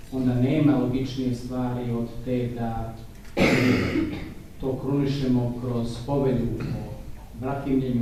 onda nema logičnije stvari od te da to krunišemo kroz povelju o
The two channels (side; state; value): both; identical; correlation 1.00